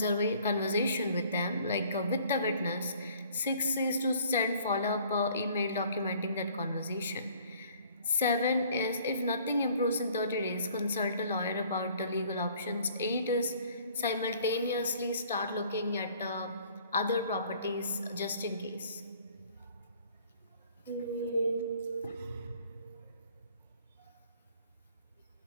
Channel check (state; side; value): inverted; both; correlation -0.56